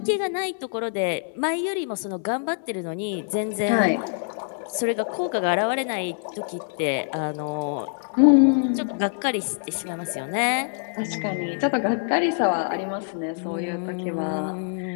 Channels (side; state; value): right; silent; 62 dB below the other